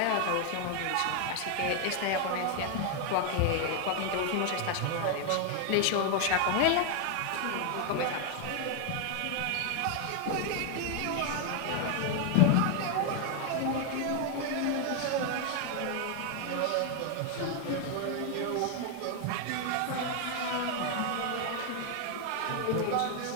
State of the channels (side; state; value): both; different; correlation 0.01